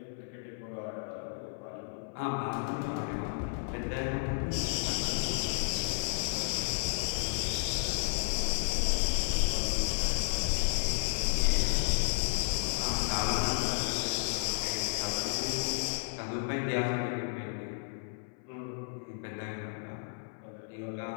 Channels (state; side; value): silent; right; 56 dB below the other